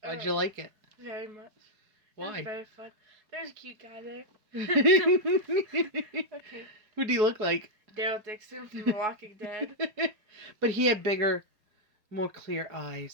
Why'd you like it? Very much. It was Why? very fun. There's a cute guy there. Okay. Who do you look like? Daryl Dixon from The Walking Dead. But he had bigger, more clear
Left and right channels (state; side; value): late; left; 4.7 ms